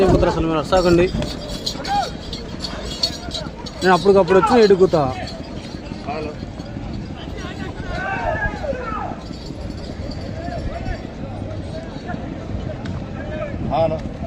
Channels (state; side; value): identical; both; correlation 1.00